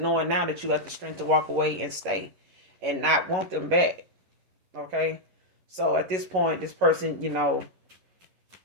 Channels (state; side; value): late; left; 11 ms